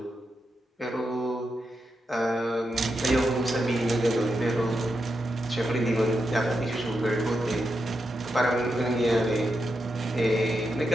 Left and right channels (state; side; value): normal; both; correlation 0.86